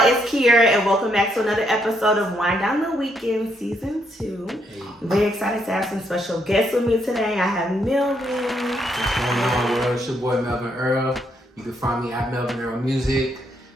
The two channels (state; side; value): normal; both; correlation 0.75